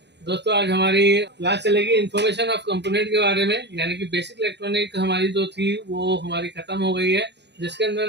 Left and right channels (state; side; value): late; left; 0.50 ms